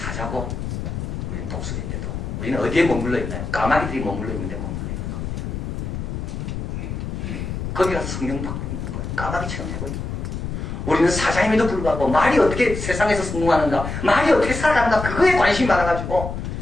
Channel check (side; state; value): left; noise; rumble, 5 dB below the sound